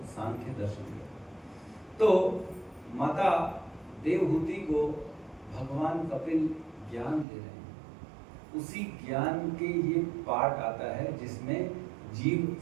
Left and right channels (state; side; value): drops out; left; at 7.2 s